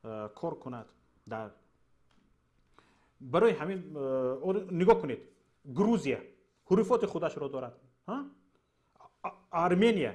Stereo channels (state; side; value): identical; both; correlation 1.00